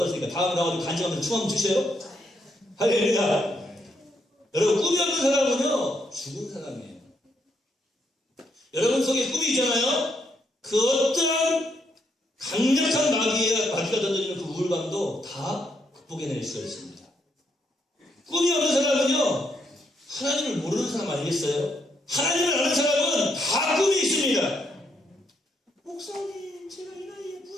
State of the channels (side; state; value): both; normal; correlation 0.77